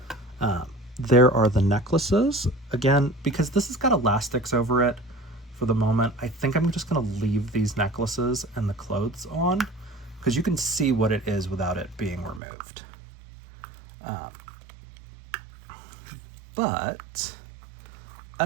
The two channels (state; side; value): drops out; left; at 12.4 s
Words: There are the necklaces. Again, because this has got elastics over it for the moment, I think I'm just gonna leave these necklaces and the clothes on, because you can see what it is without it being removed. But